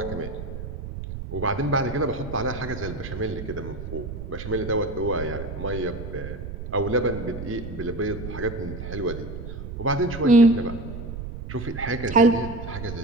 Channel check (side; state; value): right; noise; rumble, 8 dB below the sound